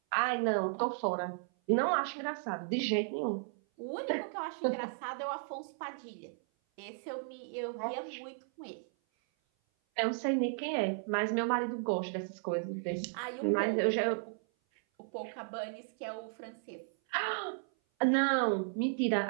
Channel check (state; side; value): silent; left; 55 dB below the other